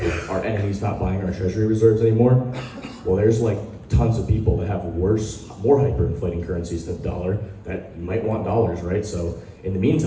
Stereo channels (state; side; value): identical; both; correlation 1.00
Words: our enemies not buying our treasury reserves anymore. Well, there's tons of people that have more hyperinflating currencies than the dollar that might want dollars, right? So in the